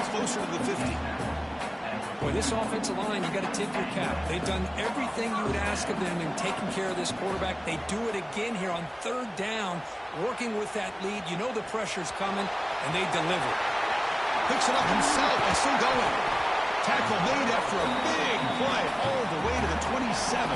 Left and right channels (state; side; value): identical; both; correlation 1.00